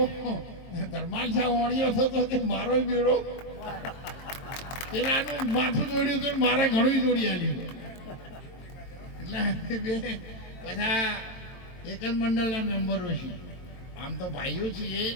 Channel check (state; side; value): late; right; 22 ms